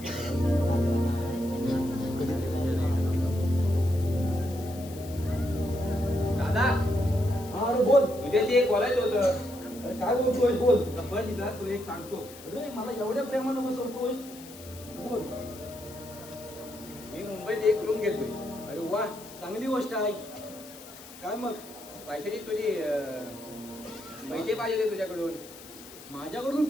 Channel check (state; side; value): noise; left; hiss, 17 dB below the sound